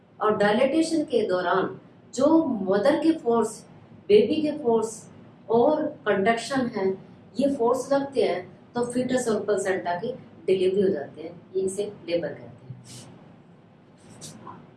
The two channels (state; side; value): identical; both; correlation 1.00